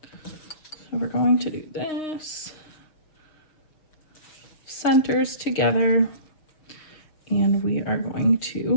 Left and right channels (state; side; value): late; right; 6.4 ms